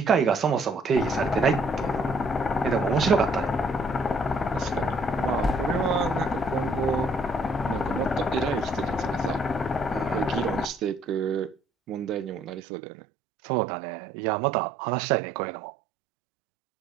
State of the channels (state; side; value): drops out; left; at 12.6 s